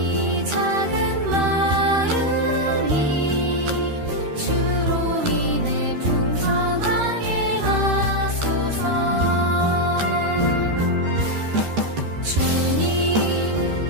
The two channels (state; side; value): late; left; 13 ms